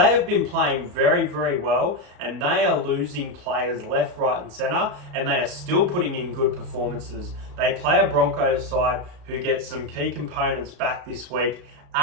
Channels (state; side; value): late; left; 34 ms